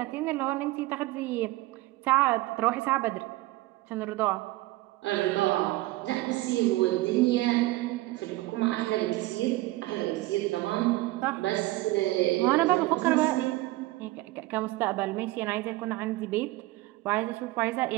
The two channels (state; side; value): quieter; left; 18.8 dB